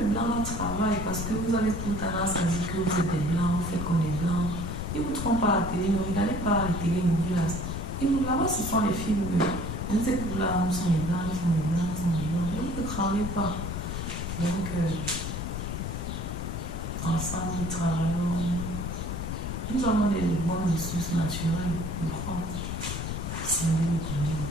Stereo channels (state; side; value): noise; left; rumble, 5 dB below the sound